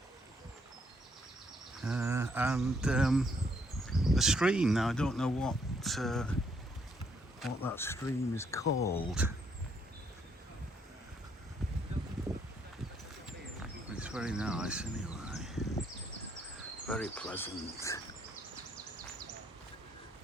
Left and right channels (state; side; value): normal; both; correlation 0.71